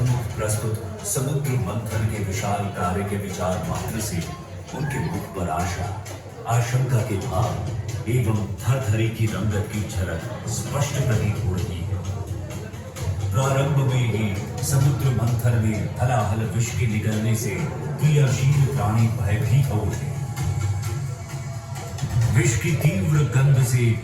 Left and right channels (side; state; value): both; identical; correlation 1.00